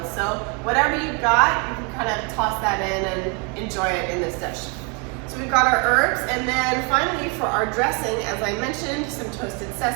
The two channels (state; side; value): quieter; left; 32.7 dB